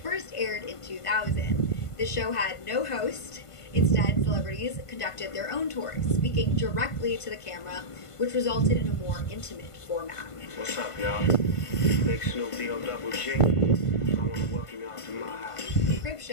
aired in 2000. The show had no host. Instead, celebrities conducted their own tours, speaking directly to the camera, which resulted in a more intimate format. What's up, y'all? Big Snoop D-O double G. I want to welcome y'all to my house. Crib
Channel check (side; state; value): right; late; 1.5 ms